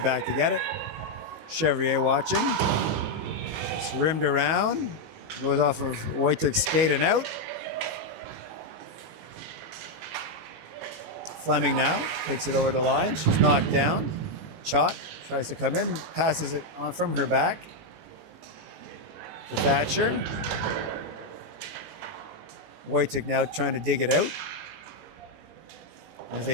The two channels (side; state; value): left; late; 19 ms